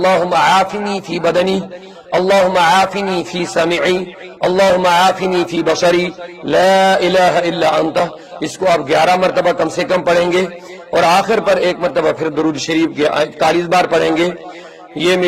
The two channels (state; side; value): identical; both; correlation 1.00